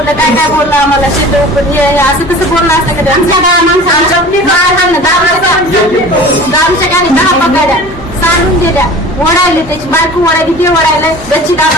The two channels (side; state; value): both; normal; correlation 0.40